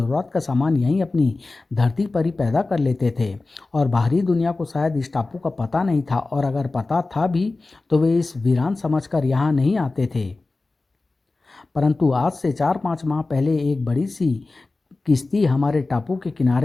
का सामान यहीं अपनी धरती पर ही पैदा कर लेते थे। और बाहरी दुनिया को शायद इस टापू का पता नहीं था, और अगर पता था भी तो वे इस वीरान समझकर यहाँ नहीं आते थे। परंतु आज से 4-5 माह पहले एक बड़ी सी किश्ती हमारे टापू के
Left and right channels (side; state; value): right; quieter; 3.4 dB